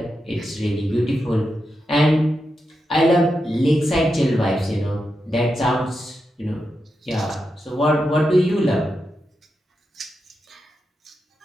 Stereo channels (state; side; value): normal; both; correlation 0.87